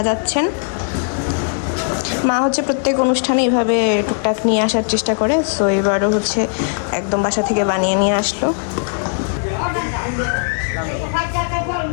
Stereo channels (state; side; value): silent; right; 67 dB below the other